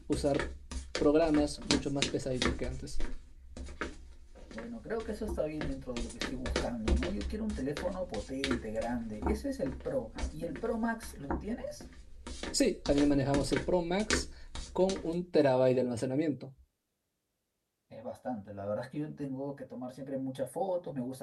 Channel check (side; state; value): both; identical; correlation 1.00